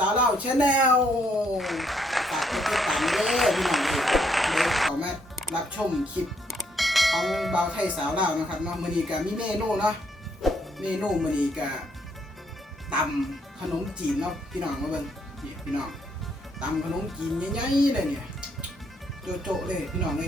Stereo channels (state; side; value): normal; both; correlation 0.72